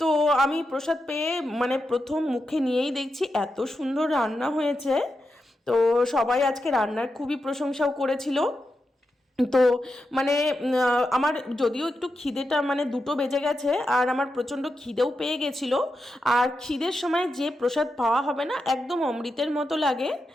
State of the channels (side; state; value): both; normal; correlation 0.88